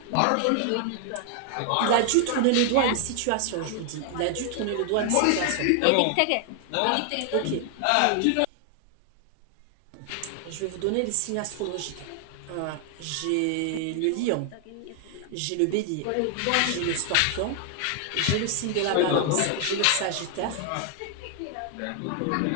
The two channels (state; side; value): different; both; correlation 0.00